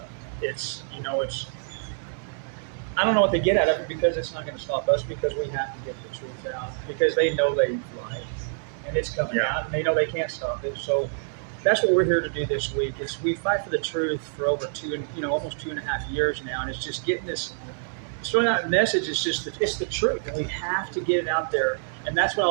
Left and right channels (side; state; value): left; silent; digital silence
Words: it's I don't know what they get out of it because it's not going to stop us because we have to get the truth out because they know they've lied. and it's coming Yeah. out, and they know they can't stop it. So that's what we're here to do this week. Is we fight for the truth for over almost 2.5 years now, and it's just getting this, throwing out a message. It's the truth, and we have to get it out there. And that's what I